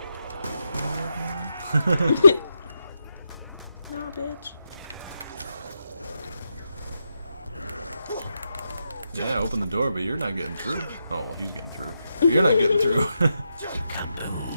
Nah, bitch. Yeah, open the door, but you're not getting through. Oh, well, he's getting through. You're not getting through.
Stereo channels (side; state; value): both; inverted; correlation -0.85